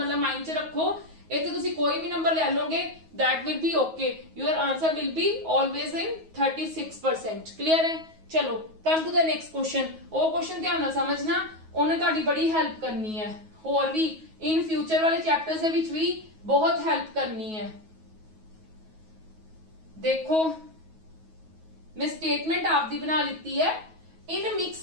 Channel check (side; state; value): left; late; 9.3 ms